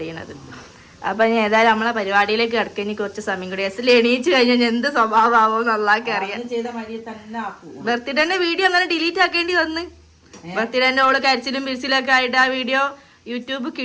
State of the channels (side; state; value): both; identical; correlation 1.00